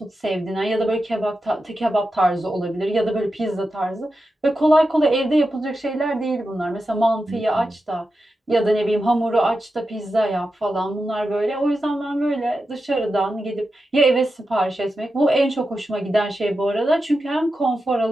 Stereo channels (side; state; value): both; normal; correlation 0.90